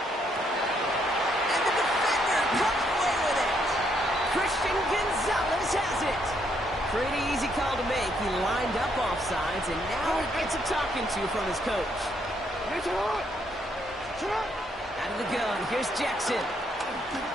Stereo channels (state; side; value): normal; both; correlation 0.73